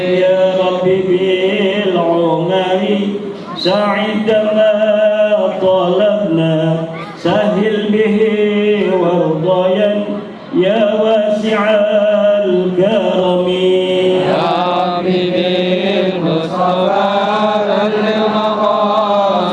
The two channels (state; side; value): identical; both; correlation 1.00